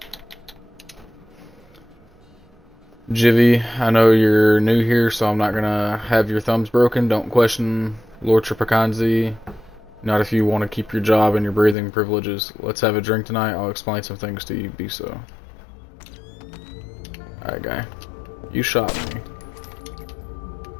Jivy, I know you're new here, so I'm not gonna have your thumbs broken. Don't question Lord Tripacanzi. Not if you want to keep your job and your breathing privileges. Let's have a drink tonight. I'll explain some things to you. Be so. Alright, guy. You shot me.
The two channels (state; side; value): drops out; right; at 11.8 s